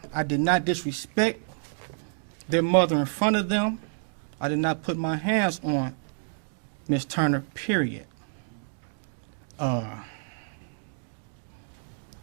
I did not disrespect their mother in front of them. I did not put my hands on Miss Turner, period. I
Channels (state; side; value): silent; left; digital silence